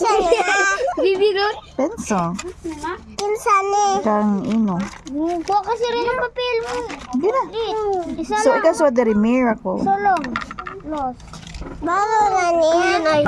Bibirot. Penso. Insane. Kang ino. Kuha kasi rin ang papel mo. Di na. Isa So, lang. ikaw sa the miracle. Solong. Los. Bago nga niya.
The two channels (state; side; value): identical; both; correlation 1.00